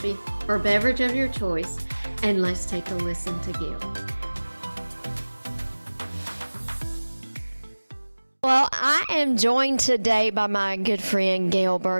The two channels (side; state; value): both; inverted; correlation -1.00